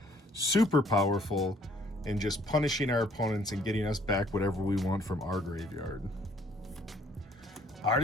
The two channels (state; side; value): normal; both; correlation 0.62